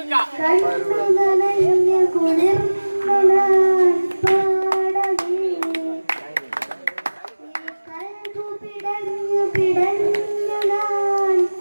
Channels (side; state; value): both; inverted; correlation -1.00